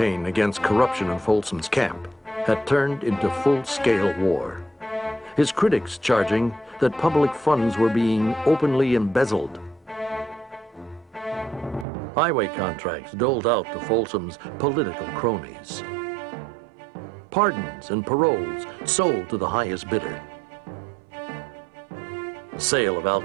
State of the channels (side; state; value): left; drops out; at 11.9 s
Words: against corruption in Folsom's camp had turned into full-scale war. His critics charging that public funds were being openly embezzled. Highway contracts doled out to Folsom's political cronies. Pardons and paroles sold to the highest bidder. Sale of